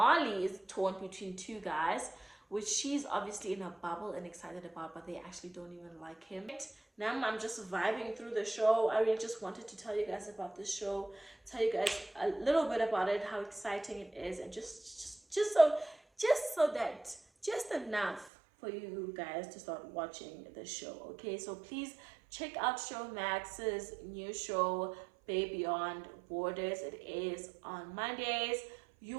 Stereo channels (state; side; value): drops out; left; at 18.3 s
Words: is torn between 2 guys, which she's obviously in a bubble and excited about, but they actually don't even like him. Now I'm just vibing through the show. I really just wanted to tell you guys about this show, tell you guys a little bit about it, how exciting it is, and just enough for you guys to start watching the show. Okay, so please check out Showmax's new show, Bay Beyond Borders. It is on Mondays. You